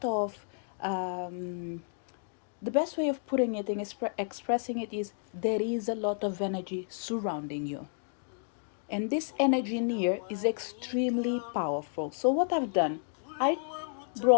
of the best way of putting it and expressing it is there is a lot of energy surrounding you. And this energy in here is extremely powerful. So what I've done, I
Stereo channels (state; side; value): silent; right; digital silence